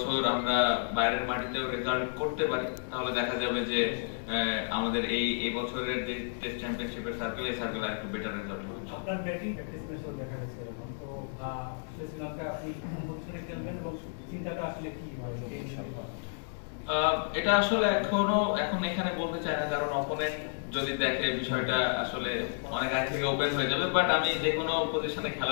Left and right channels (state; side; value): silent; right; digital silence